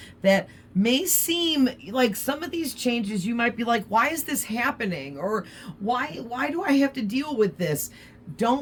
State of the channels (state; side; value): identical; both; correlation 1.00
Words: that may seem like, some of these changes you might be like, why is this happening? Or why do I have to deal with this?